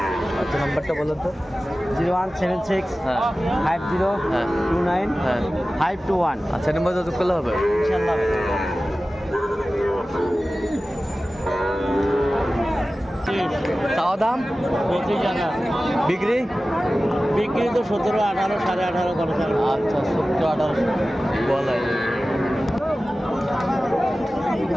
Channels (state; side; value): normal; both; correlation 0.96